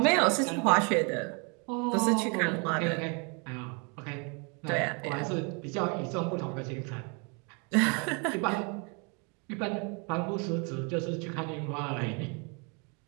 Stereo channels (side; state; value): left; quieter; 33.9 dB